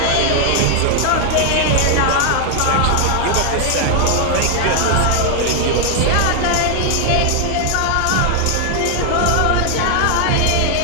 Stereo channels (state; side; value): different; both; correlation 0.00